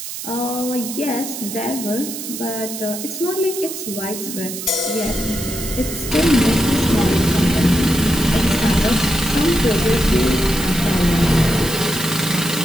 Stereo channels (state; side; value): noise; right; hiss, 8 dB below the sound